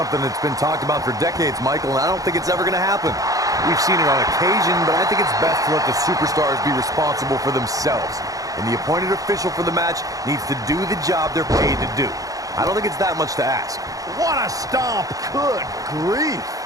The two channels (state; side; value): late; left; 0.17 ms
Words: that's been talked about for decades, Michael, and I don't think it's ever going to happen. We've seen it on occasion, but I think it's best to let the superstars be responsible for themselves. And the appointed official for the match needs to do the job they're paid to do. I don't think it's that much to ask. What a stomp. Good grief.